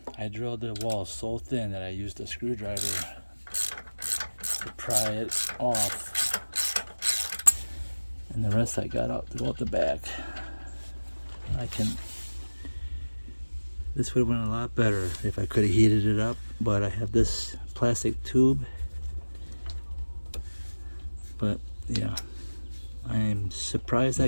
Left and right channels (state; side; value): inverted; both; correlation -1.00